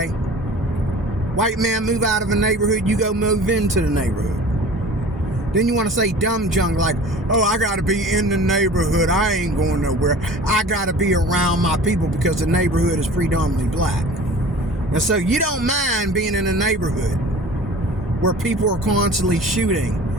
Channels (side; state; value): both; normal; correlation 0.42